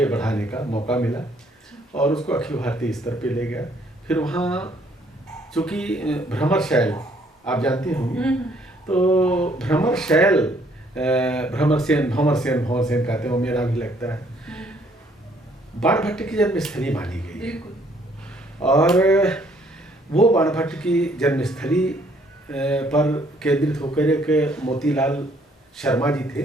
बढ़ाने का मौका मिला और उसको अखिल भारतीय स्तर पे ले गया। फिर वहाँ चूँकि भ्रमर शैल आप जानते होंगे, तो भ्रमर शैल, भ्रमर सेन कहते हैं, वो मेरा भी लगता है, बाणभट्ट की जन्मस्थली मानी गई है। और वो बाणभट्ट की जन्मस्थली पर केंद्रित होकर एक मोतीलाल शर्मा जी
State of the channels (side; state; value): both; normal; correlation 0.65